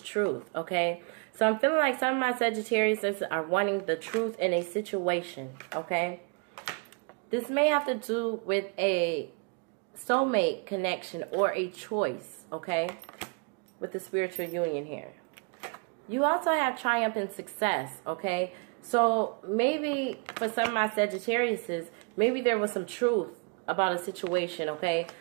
okay? So I'm feeling like some of my Sagittarius are wanting the truth in a situation, okay? This may have to do with a soulmate connection or a choice, okay? With the spiritual union here. You also have triumph and success, okay? So maybe for some of my Sagittariuses, maybe there was some truth about a situation, okay,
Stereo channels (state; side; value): quieter; left; 33.6 dB